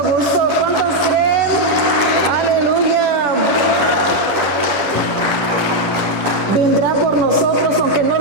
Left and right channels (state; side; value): late; left; 10 ms